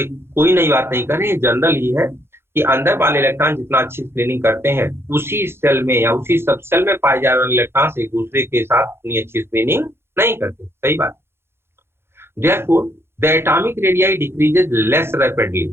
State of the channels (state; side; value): late; left; 0.12 ms